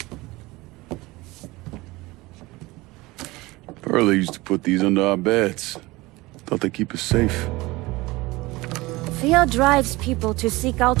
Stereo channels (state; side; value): quieter; left; 21.1 dB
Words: Pearlie used to put these under our beds. Thought they keep us safe. Fear drives people to seek